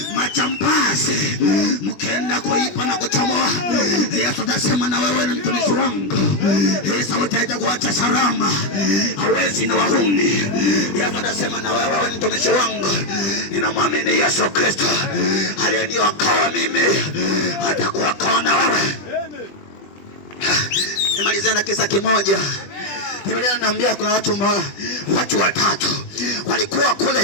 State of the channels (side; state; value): right; late; 20 ms